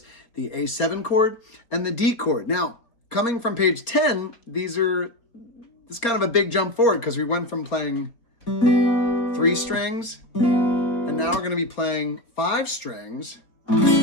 the A7 chord and the D chord. Now, coming from page 10, this is kind of a big jump forward because we went from playing 3 strings, and now we're going to be playing 5 strings for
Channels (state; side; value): late; right; 4.3 ms